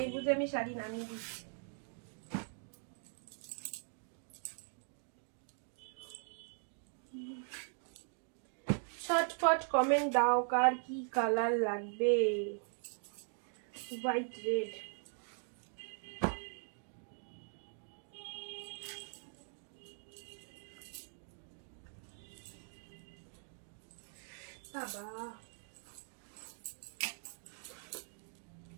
বুঝে আমি শাড়ি নামিয়ে দিচ্ছি। ঝটপট কমেন্ট দাও কার কি কালার লাগবে, হোয়াইট রেড, বাবা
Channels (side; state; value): left; silent; 51 dB below the other